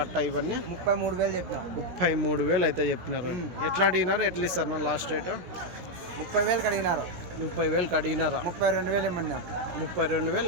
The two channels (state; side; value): late; left; 16 ms